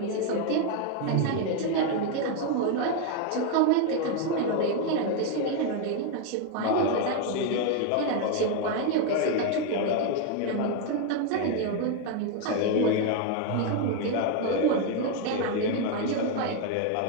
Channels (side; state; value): both; different; correlation 0.01